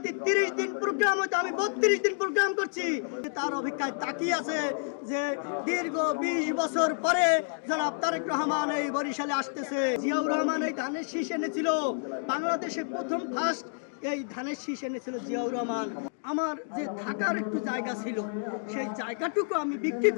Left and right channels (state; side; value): silent; right; digital silence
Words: যদি 30 দিন প্রোগ্রাম হতো আমি 32 দিন প্রোগ্রাম করছি। তার অপেক্ষায় তাকিয়ে আছে যে দীর্ঘ 20 বছর পরে জনাব তারেক রহমান এই বরিশালে আসতেছে। জিয়াউর রহমান এই ধানের শীষ এনেছিল, বাংলাদেশে প্রথম ফার্স্ট এই ধানের শীষ এনেছিল জিয়াউর রহমান। আমার যে থাকার একটু জায়গা ছিল সেই জায়গাটুকু আমি বিক্রি